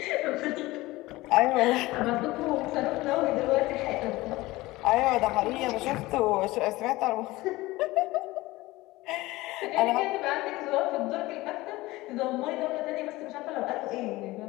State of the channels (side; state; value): right; quieter; 19.4 dB